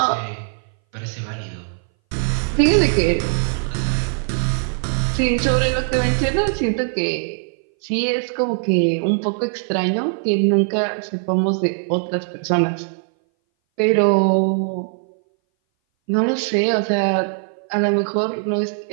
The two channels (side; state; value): left; silent; 60 dB below the other